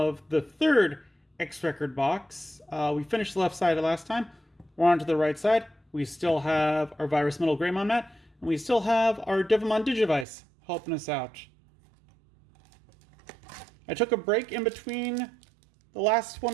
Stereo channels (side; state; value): left; drops out; at 10.2 s